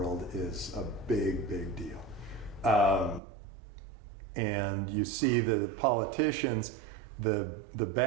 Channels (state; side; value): drops out; left; at 3.2 s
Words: is a big, big deal. And you see the politicians, the